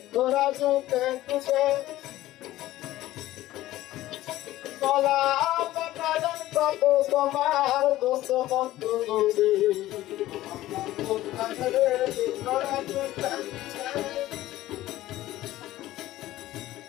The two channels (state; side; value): quieter; right; 15.5 dB